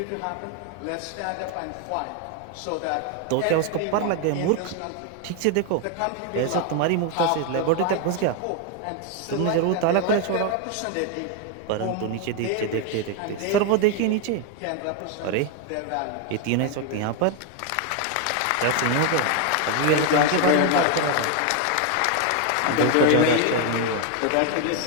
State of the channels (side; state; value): both; different; correlation 0.01